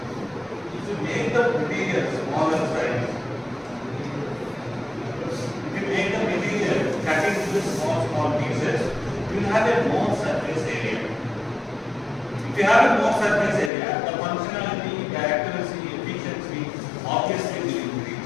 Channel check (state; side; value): drops out; right; at 13.7 s